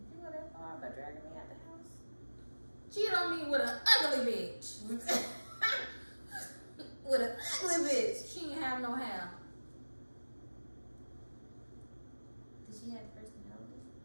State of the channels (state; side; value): inverted; both; correlation -1.00